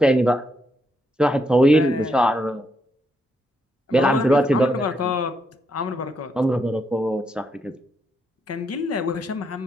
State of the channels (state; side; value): normal; both; correlation 0.79